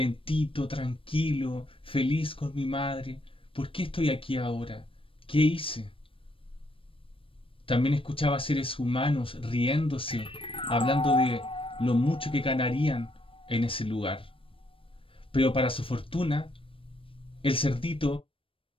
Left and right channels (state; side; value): late; right; 0.26 ms